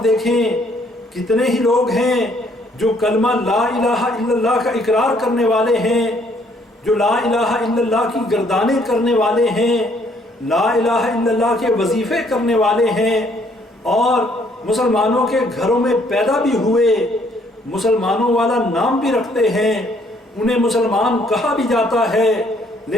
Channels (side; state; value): both; normal; correlation 0.65